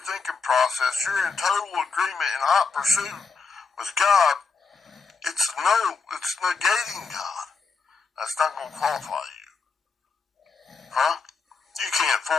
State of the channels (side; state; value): right; quieter; 4.8 dB